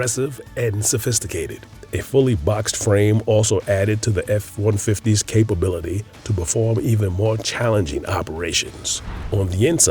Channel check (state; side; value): identical; both; correlation 1.00